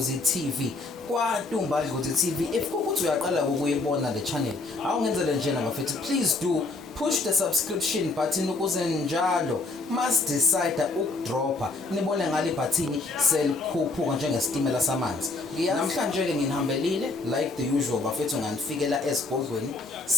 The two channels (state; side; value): quieter; right; 3.4 dB